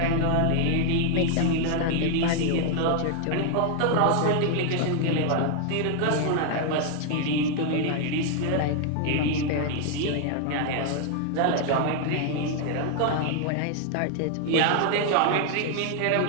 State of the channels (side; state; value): both; different; correlation 0.00